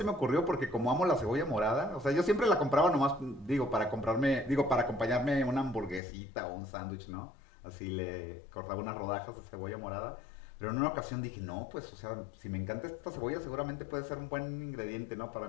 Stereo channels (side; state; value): right; drops out; at 6.0 s